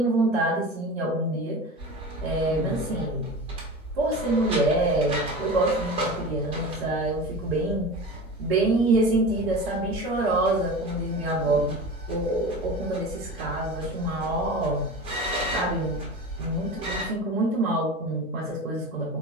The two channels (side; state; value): both; normal; correlation 0.31